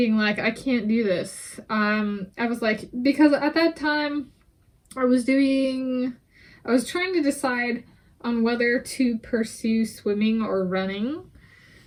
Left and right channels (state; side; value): identical; both; correlation 1.00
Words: like, I can't do this. I was like, because at that time I was trying to decide on whether to pursue swimming or running